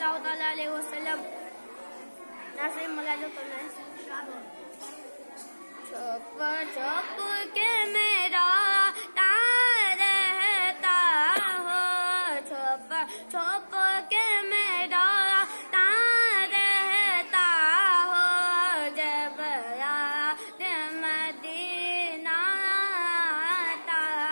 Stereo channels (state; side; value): inverted; both; correlation -1.00